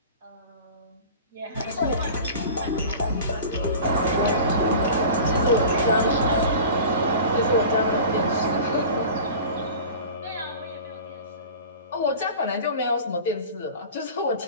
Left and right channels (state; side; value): inverted; both; correlation -0.38